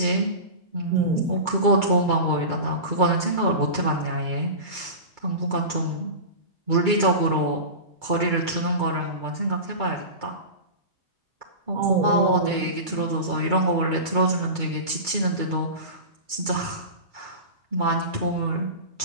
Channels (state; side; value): late; left; 2.3 ms